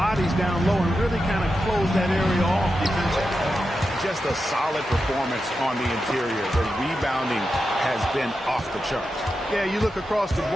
down low and really kind of close that area off defensively. Just a solid performance on the interior. The rebounding has been off the charts. Yeah, you look across the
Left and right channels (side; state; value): both; normal; correlation 0.89